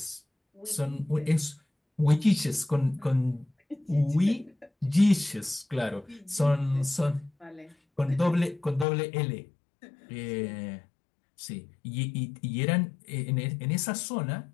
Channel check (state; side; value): drops out; right; at 8.8 s